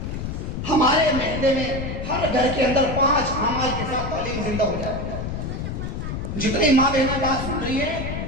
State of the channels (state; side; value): noise; left; rumble, 5 dB below the sound